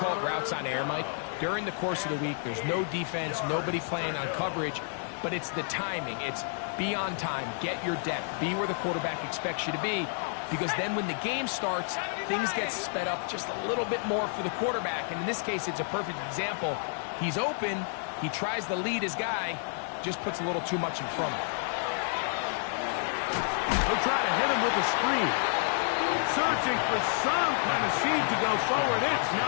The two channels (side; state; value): right; silent; 58 dB below the other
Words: it routes on air, Mike. During the course of the week, there's no defense, nobody playing on coverage, but it's the timing. It's be on time, get your depth, be where the quarterback expects you to be, because then when the game starts, things get sped up just a little bit more for the quarterback. And in this case, it's a perfect example. He's open, he tries to lead his guy, just puts a little too much in front of him. They'll try to hit him with a screen. Searching for some kind of seed to go forward. It's